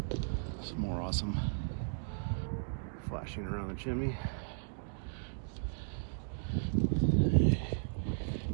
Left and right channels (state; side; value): silent; left; digital silence